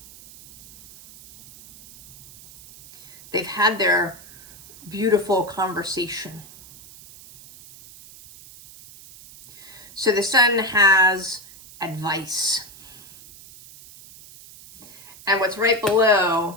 They've had their beautiful conversation. So the Sun has advice. And what's right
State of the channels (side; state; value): right; noise; hiss, 20 dB below the sound